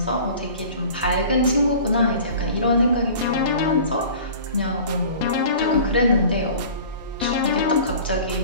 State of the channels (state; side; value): inverted; both; correlation -0.43